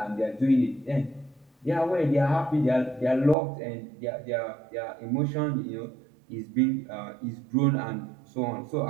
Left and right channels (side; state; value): left; drops out; at 3.4 s